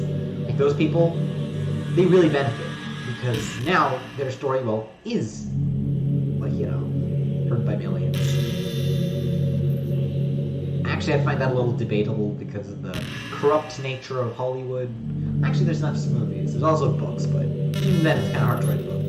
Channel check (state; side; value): identical; both; correlation 1.00